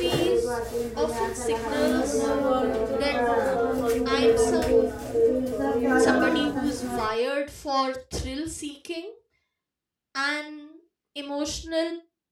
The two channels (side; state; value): both; identical; correlation 1.00